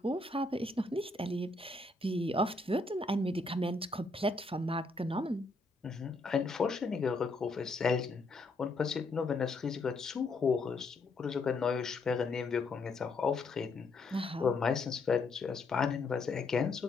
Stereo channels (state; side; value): quieter; right; 3.3 dB